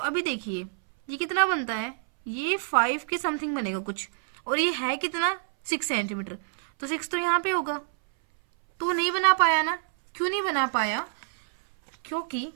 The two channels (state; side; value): silent; left; 59 dB below the other